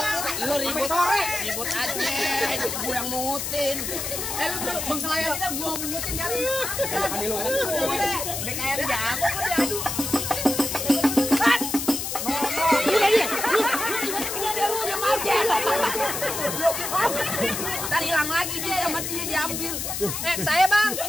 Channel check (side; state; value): left; noise; hiss, 4 dB below the sound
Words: Lu ribut sore. Ribut aja, gue yang mungutin. Lu bengkelaya kita gua mungutin kali. Ani lu. Udah kayak jago kok diadu. Tadi hilang lagi dia sama dia diambil. Saya bang.